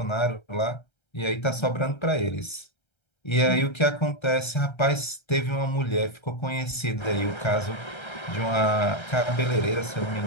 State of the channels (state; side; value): late; right; 1.3 ms